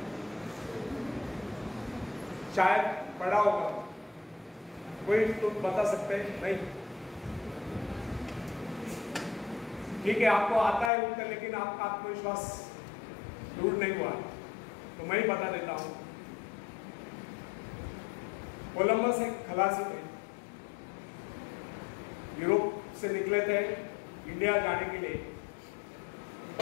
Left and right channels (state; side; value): drops out; right; at 10.9 s